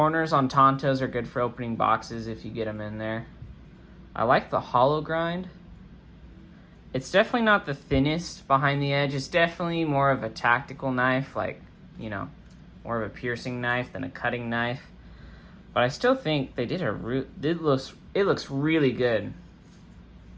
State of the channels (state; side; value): identical; both; correlation 1.00